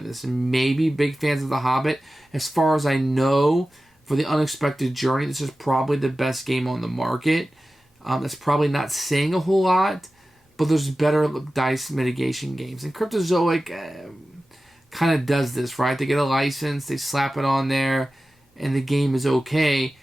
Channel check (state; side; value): normal; both; correlation 0.95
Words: this. And maybe big fans of The Hobbit. As far as I know, for The Unexpected Journey, this is probably the best game on the market. That's probably not saying a whole lot, but there's better dice mitigation games. And Cryptozoic kind of does this, right? They get a license, they slap it on there, and the game is okay.